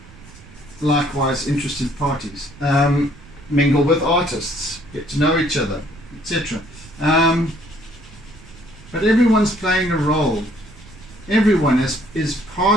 likewise interested parties. Mingle with artists. Get to know each other, etc. But everyone's playing a role. Everyone is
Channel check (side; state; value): right; noise; rumble, 21 dB below the sound